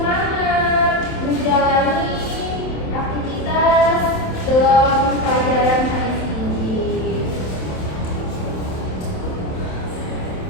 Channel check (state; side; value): late; right; 27 ms